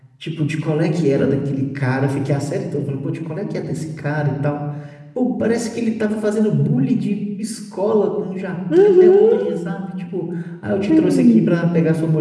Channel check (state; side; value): identical; both; correlation 1.00